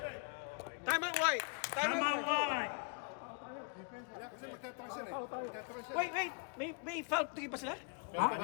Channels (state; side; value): quieter; right; 34.2 dB